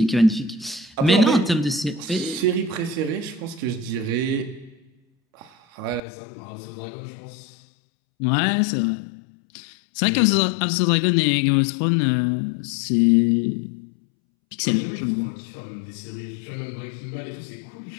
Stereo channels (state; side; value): drops out; right; at 6.0 s